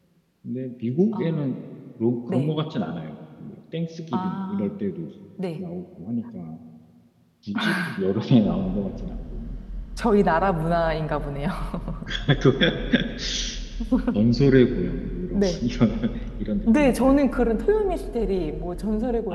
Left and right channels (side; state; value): both; identical; correlation 1.00